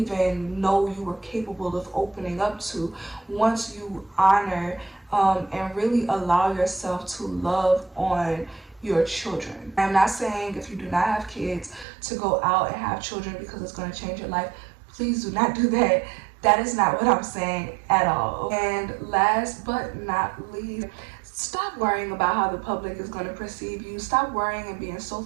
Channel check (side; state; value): left; drops out; at 11.9 s